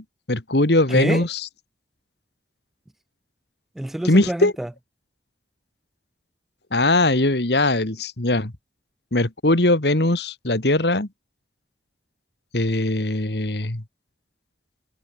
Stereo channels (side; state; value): both; normal; correlation 0.27